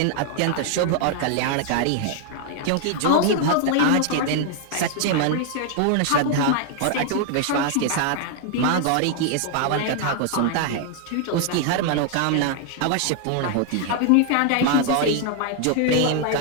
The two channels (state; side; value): different; both; correlation 0.00